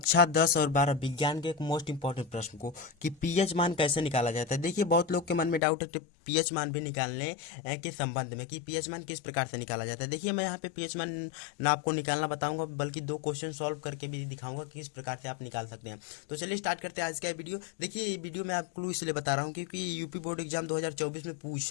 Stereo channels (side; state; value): right; drops out; at 5.6 s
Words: 10 और 12 विज्ञान के एक मोस्ट इंपॉर्टेंट प्रश्न को कि पीएच मान कैसे निकाला जाता है। देखिए, बहुत लोग के मन में डाउट है कि पीएच मान भी निकालने के संबंध में कि पीएच मान किस प्रकार से निकाला जाता है। देखिए, मैं यहाँ पे पीएच मान ना आपको निकालना बताऊंगा, बल्कि दो क्वेश्चन सॉल्व करके भी दिखाऊंगा कि किस प्रकार से आप निकाल सकते हैं। तो चलिए स्टार्ट करते हैं आज का वीडियो। देखिए, ये वीडियो मैं आपको क्लू इसलिए बता रहा हूँ क्योंकि यूपी बोर्ड एग्जाम 2024 में